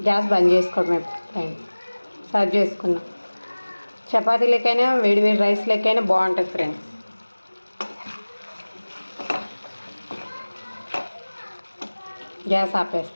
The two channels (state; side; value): inverted; both; correlation -1.00